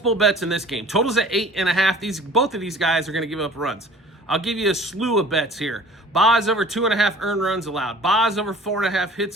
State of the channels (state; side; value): normal; both; correlation 0.47